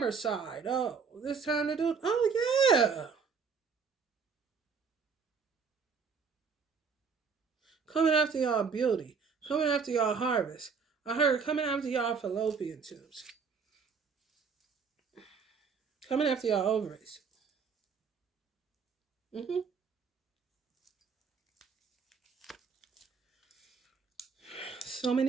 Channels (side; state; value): left; quieter; 5.6 dB